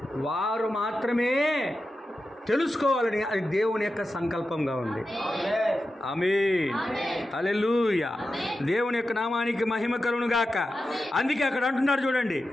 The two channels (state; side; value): normal; both; correlation 0.91